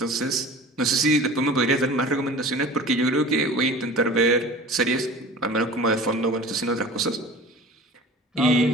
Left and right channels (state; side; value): normal; both; correlation 0.41